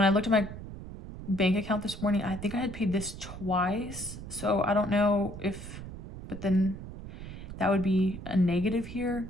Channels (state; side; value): noise; right; rumble, 11 dB below the sound